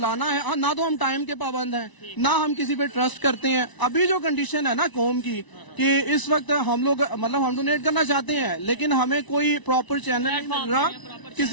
ہے, نہ تو ہم ٹائم کے پابند ہیں, نہ ہم کسی پہ ٹرسٹ کرتے ہیں. ابھی جو کنڈیشن ہے نا قوم کی کہ اس وقت ہم لوگ مطلب ہم ڈونیٹ کرنا چاہتے ہیں, لیکن ہمیں کوئی پراپر چینل نہیں مل رہا. کس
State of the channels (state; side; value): late; right; 1.0 ms